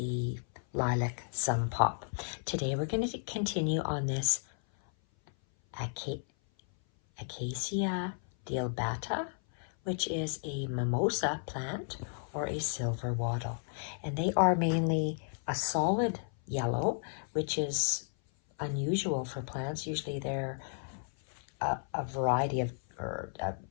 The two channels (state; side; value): silent; right; 56 dB below the other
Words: lilac some pop. Today we're going to continue on this Acacia dealbata, which is a mimosa plant or a silver wattle. And they are mainly a solid yellow, which is unusual for plants. Usually they're a variety of, or a